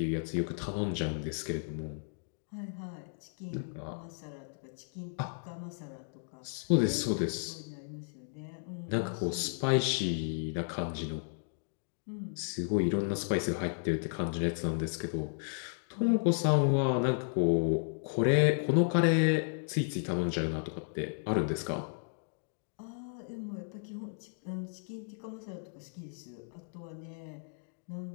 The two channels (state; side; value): silent; right; digital silence